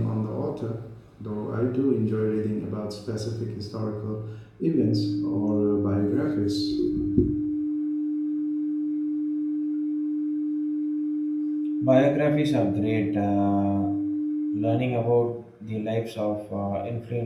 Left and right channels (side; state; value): both; identical; correlation 1.00